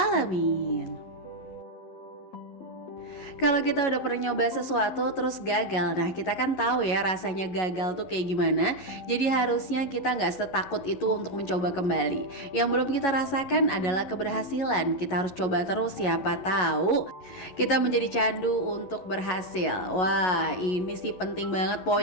Kalau kita udah pernah nyoba sesuatu terus gagal, nah kita kan tahu ya rasanya gagal tuh kayak gimana. Jadi harusnya kita nggak setakut itu untuk mencoba kembali. Yang belum kita rasakan adalah keberhasilan. Kita harus coba terus, siapa tahu kita menjadi candu untuk berhasil. Wah, ini sih penting banget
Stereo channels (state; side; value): late; right; 11 ms